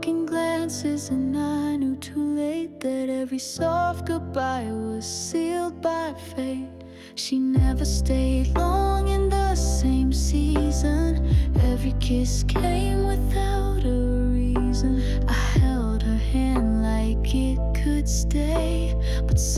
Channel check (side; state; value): both; identical; correlation 1.00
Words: in glances and I knew too late that every soft goodbye was sealed by fate. She never stayed long in the same season. Every kiss came without a reason. I held her hand like it could stay, but